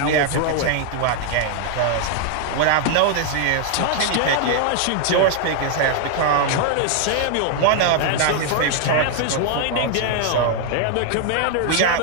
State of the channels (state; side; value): different; both; correlation 0.00